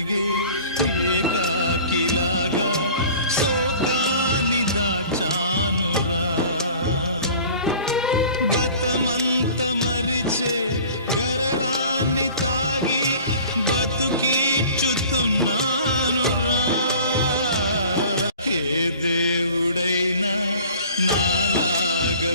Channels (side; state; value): both; inverted; correlation -0.45